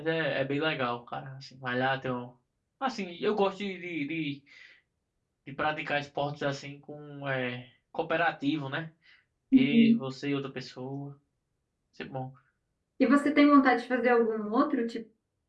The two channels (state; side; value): identical; both; correlation 1.00